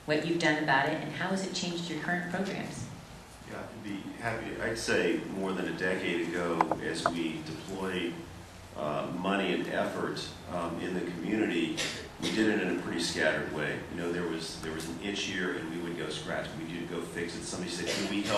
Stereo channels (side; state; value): both; identical; correlation 1.00